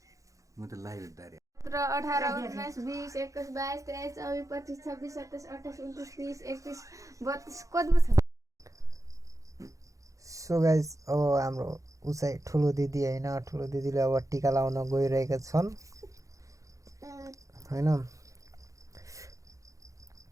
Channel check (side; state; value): left; late; 0.16 ms